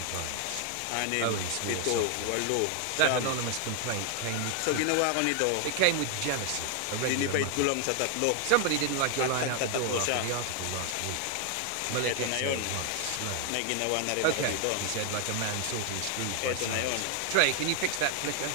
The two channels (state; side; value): different; both; correlation 0.00